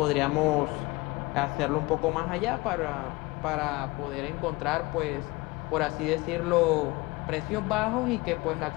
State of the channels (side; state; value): right; quieter; 23.0 dB